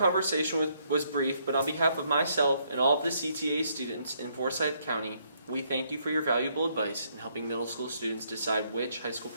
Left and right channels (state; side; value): inverted; both; correlation -0.71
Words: was brief, but on behalf of myself and all of the CTA students in Forsyth County, we thank you for your valuable advice in helping middle school students decide which high school